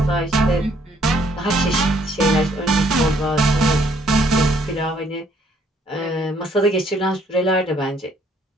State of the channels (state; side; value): normal; both; correlation 0.66